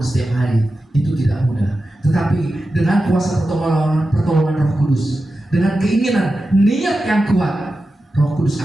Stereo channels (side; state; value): both; normal; correlation 0.92